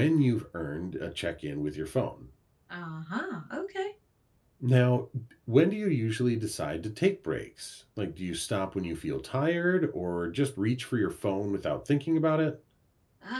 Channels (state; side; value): identical; both; correlation 1.00